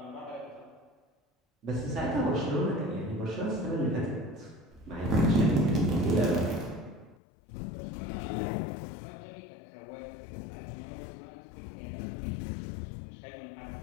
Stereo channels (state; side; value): drops out; right; at 7.2 s